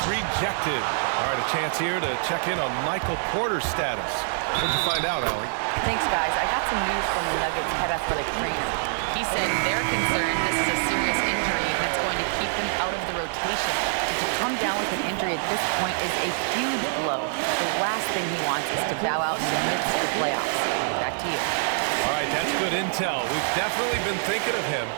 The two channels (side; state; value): left; silent; digital silence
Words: rejected. All right, a chance here to check in on Michael Porter's status. What'd you find out, Allie? Thanks, guys. I got some news from the Nuggets head athletic trainer. He said they're concerned this is a serious injury that's going to keep him out of the rotation. And to come down with an injury at this point is a huge blow. The last thing he wants is to bow out in the midst of the playoffs. Back to you. All right, that's good intel. We've definitely been thinking of him,